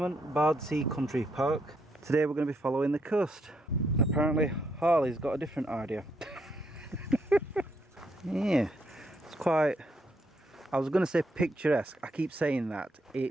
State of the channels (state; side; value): normal; both; correlation 0.76